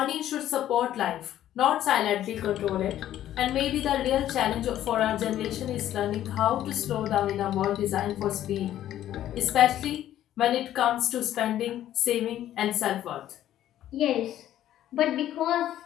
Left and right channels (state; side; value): quieter; right; 12.3 dB